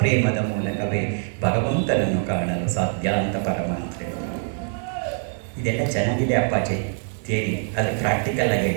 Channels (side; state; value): left; silent; 56 dB below the other